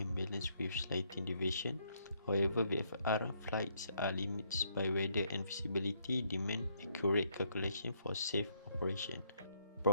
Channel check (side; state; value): both; inverted; correlation -0.72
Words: balance with slight deviation. However, VFR flights are limited by weather and visibility, demand accurate calculation for safe operation.